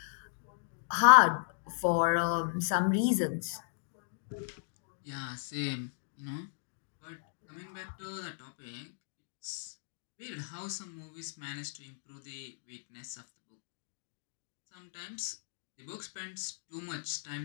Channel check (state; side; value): silent; right; digital silence